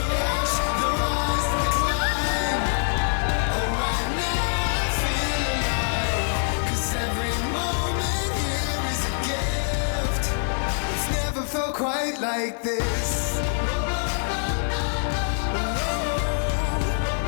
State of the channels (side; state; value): right; silent; 58 dB below the other